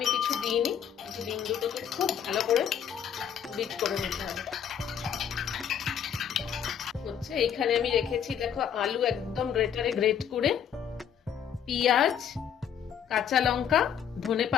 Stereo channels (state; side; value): quieter; right; 8.5 dB